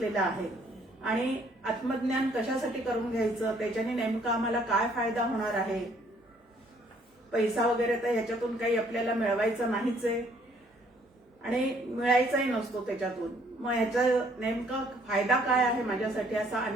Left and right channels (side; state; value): both; normal; correlation 0.63